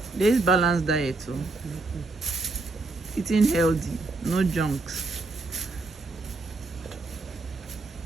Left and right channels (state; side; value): quieter; left; 3.4 dB